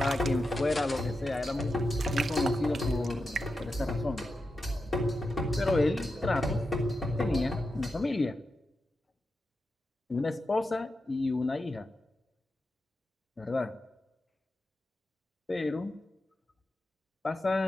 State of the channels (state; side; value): normal; both; correlation 0.89